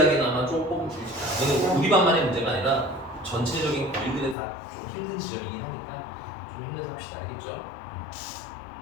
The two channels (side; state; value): right; drops out; at 4.4 s